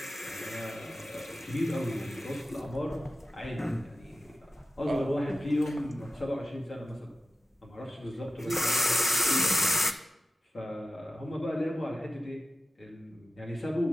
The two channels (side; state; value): both; normal; correlation 0.94